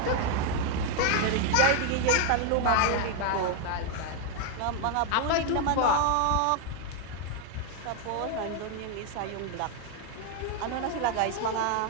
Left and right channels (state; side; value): different; both; correlation 0.01